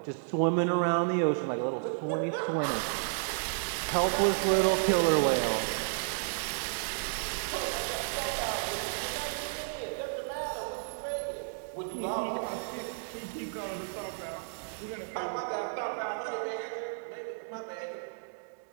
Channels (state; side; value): silent; left; digital silence